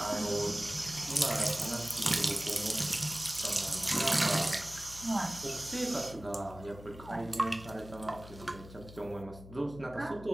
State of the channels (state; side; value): noise; left; hum, 16 dB below the sound